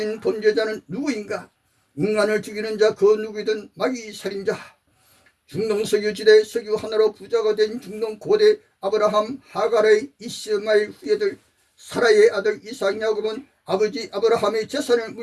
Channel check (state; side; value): identical; both; correlation 1.00